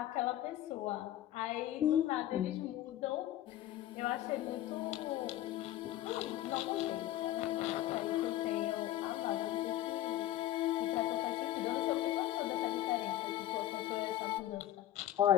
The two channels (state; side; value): quieter; right; 13.4 dB